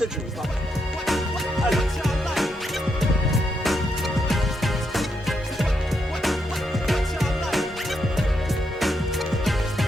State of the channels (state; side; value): normal; both; correlation 0.80